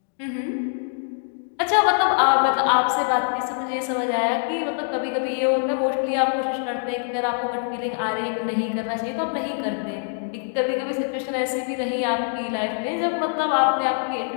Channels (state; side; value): silent; right; digital silence